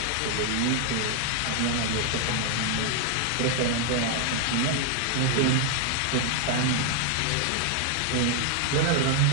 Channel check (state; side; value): different; both; correlation 0.00